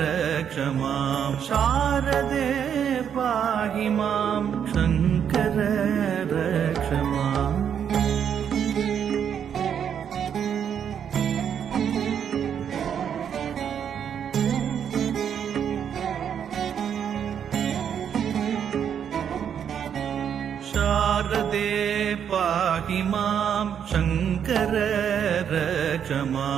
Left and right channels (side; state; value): left; quieter; 8.3 dB